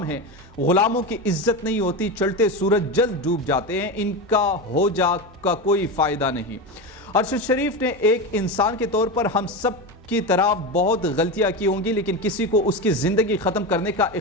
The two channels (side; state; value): both; normal; correlation 0.19